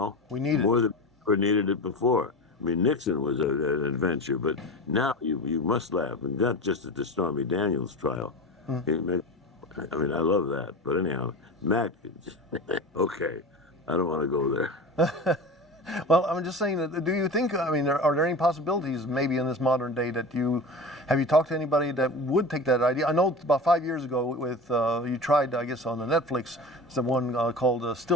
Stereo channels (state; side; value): normal; both; correlation 0.30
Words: We need more than we needed it before. I mean, Nixon was an adventure, but now you must laugh, and not just at the Stormy Daniels trial. I mean, I love that. But anyhow, Mac, okay, I don't want to go there. Well, I'm just saying, do you think, are there any possibilities maybe in this modern day that have you talked to anybody that would take that idea? I know about 5 years ago you tried, I guess, on the Netflix, the one called